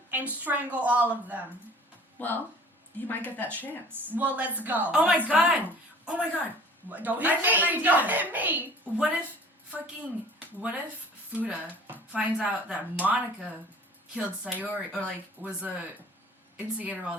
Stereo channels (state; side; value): normal; both; correlation 0.47